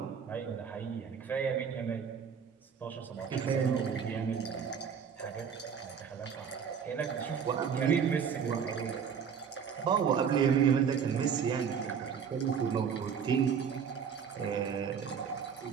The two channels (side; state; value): left; quieter; 7.0 dB